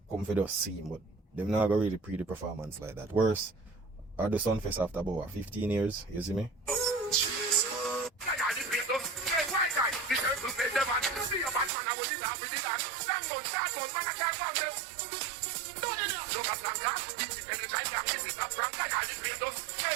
come for the scene, but them not go really pre the performance like that. Worse, at the Sunfest after about 15 years, you see me?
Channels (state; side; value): drops out; left; at 11.7 s